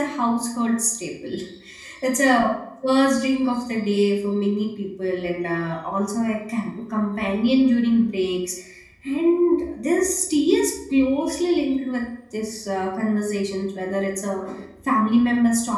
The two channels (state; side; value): identical; both; correlation 1.00